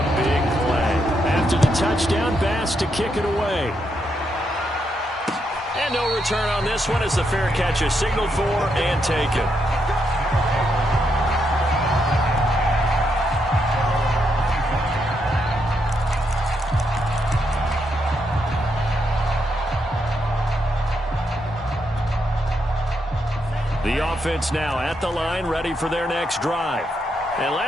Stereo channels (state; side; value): normal; both; correlation 0.80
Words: big play. After the touchdown, Bass to kick it away. And no return on this one as the fair catch is signaled for and taken. The offense now at the line, ready for their next drive. And